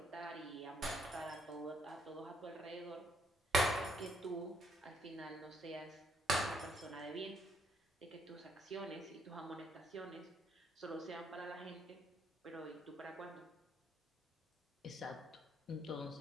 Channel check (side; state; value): both; normal; correlation 0.70